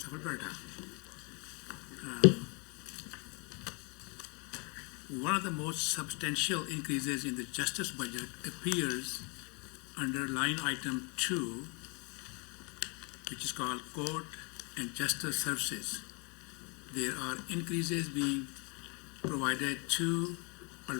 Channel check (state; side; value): quieter; right; 33.0 dB